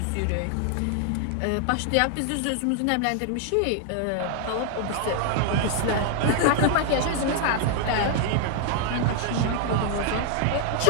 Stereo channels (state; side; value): different; both; correlation 0.00